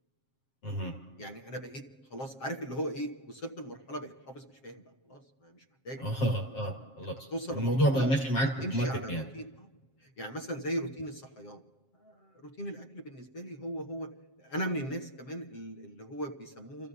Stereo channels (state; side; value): late; right; 7.5 ms